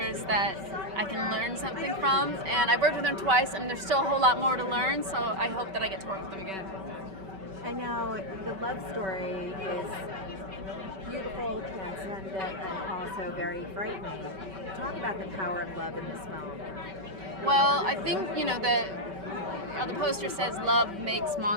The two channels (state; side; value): late; left; 5.2 ms